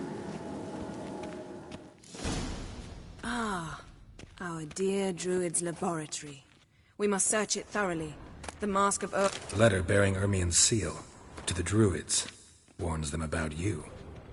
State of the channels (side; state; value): both; identical; correlation 1.00